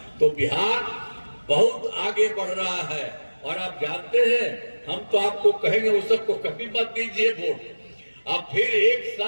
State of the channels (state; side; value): inverted; both; correlation -1.00